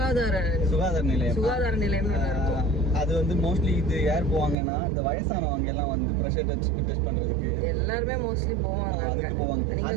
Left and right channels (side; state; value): left; drops out; at 4.5 s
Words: நிலையம் இருக்கும். அது வந்து மோஸ்ட்லி இது யார் போவாங்கன்னா, இந்த வயசானவங்க எல்லாம் வந்து பிரஷர் டெஸ்ட் பண்றதுக்கு எல்லாருமே மோஸ்ட்லி போவாங்க. அதுக்கு போவாங்க. நீங்க